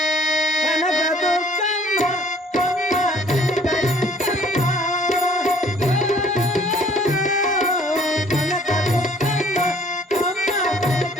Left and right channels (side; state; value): both; normal; correlation 0.56